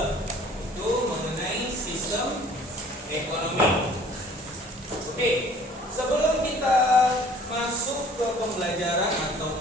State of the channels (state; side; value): normal; both; correlation 0.52